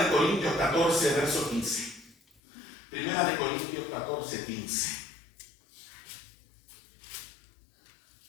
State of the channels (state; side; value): drops out; right; at 2.4 s